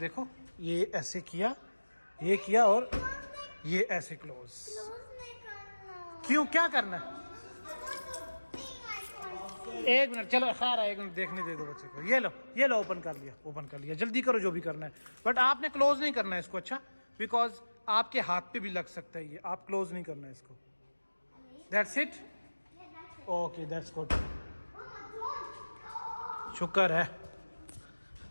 ये ऐसे किया, ये किया और ये ऐसे क्लोज। क्यों, क्या करना है? एक मिनट, चलो खैर एक मिनट देखने दे दो बच्चे को। ये लो ओपन कर लिया, जल्दी करो जो भी करना है, बट आपने क्लोज नहीं करना है इसको, अच्छा, बिकॉज आपके हाथ पे भी लग सकता है ये, आप क्लोज नहीं करना है इसको। That's it, okay that's good, शुक्र है।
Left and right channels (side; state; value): both; inverted; correlation -1.00